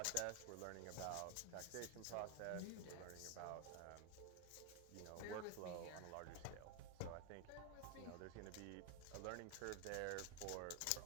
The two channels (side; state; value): both; different; correlation 0.01